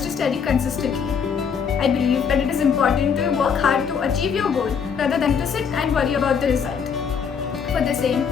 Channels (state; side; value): quieter; right; 6.7 dB